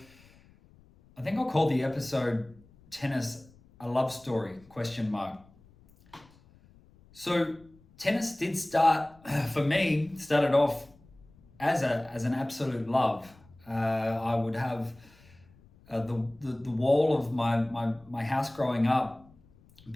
I think I'll call the episode Tennis a Love Story, ? So tennis did started off as an absolute love. I would have the wall of my house growing up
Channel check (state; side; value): noise; left; rumble, 27 dB below the sound